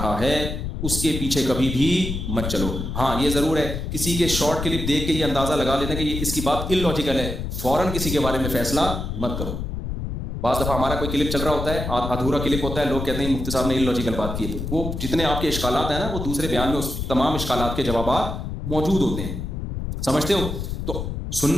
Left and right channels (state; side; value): noise; left; rumble, 4 dB below the sound